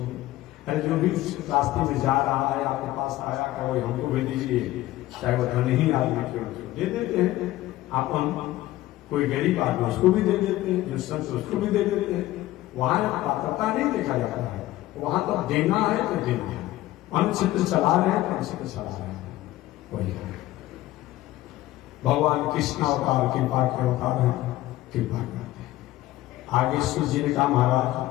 अरे जो भी रास्ते में जा रहा है आपके पास आया, क्या वही हमको भी दीजिए, चाहे वो धनी आदमी क्यों, दे देते हैं। आप हम कोई गरीब आदमी उसको भी दे देते हैं, जो संत उसको भी दे देते हैं। वहां पात्रता नहीं देखा जाता है, वहां तो देना है तो देना है। अन्य क्षेत्र चला रहे हैं तो अन्य क्षेत्र चला रहे हैं, वही है। भगवान कृष्ण अवतार कृपा के अवतार है, कृपा करते हैं। आगे सूर्य जी ने कहा,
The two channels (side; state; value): right; quieter; 16.0 dB